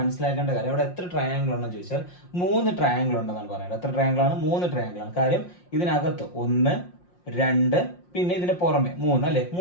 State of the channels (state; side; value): late; right; 5.6 ms